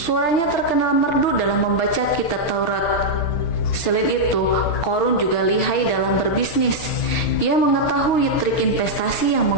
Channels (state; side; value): late; right; 6.7 ms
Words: terkenal merdu dalam membaca kitab Taurat. Selain itu, Qorun juga lihai dalam berbisnis. Ia mengetahui trik investasi yang